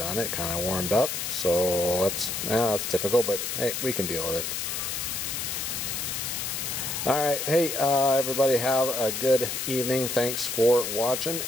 It kind of warmed up. So that's typical, but hey, we can deal with it. Alright, hey, everybody have a good evening. Thanks for watching,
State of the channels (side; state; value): left; noise; hiss, 3 dB below the sound